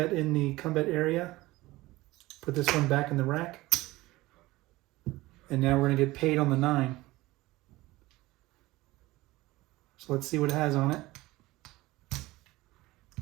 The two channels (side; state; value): left; quieter; 19.0 dB